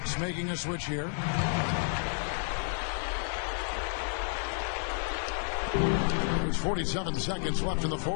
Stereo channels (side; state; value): right; silent; 57 dB below the other